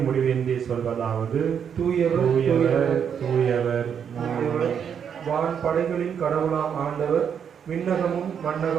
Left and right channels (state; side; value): quieter; left; 7.8 dB